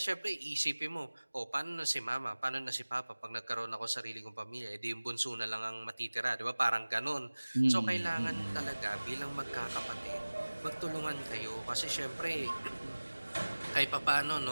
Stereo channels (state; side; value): inverted; both; correlation -1.00